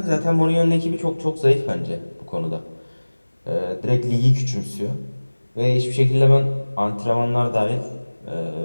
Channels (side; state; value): both; inverted; correlation -1.00